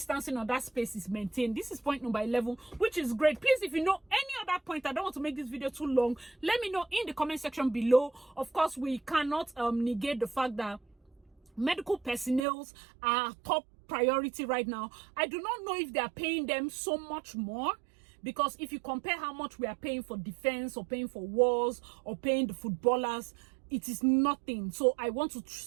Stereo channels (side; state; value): left; drops out; at 12.5 s